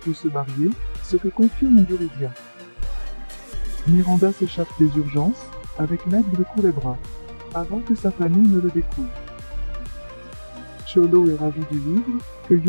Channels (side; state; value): both; inverted; correlation -1.00